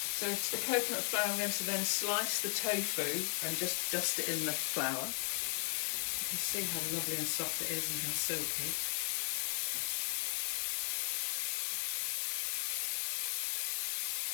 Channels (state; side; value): silent; right; digital silence